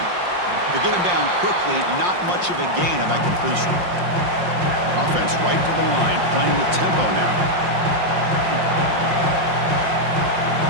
To get him down quickly, not much of a gain on that completion. Offense right to the line, playing with tempo now.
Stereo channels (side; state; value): left; late; 5.6 ms